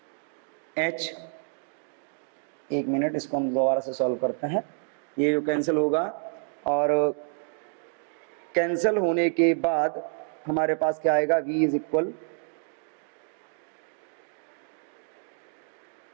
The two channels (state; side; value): silent; left; 59 dB below the other